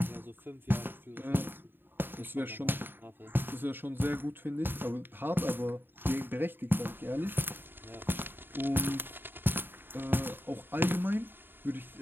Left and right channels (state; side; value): late; left; 0.097 ms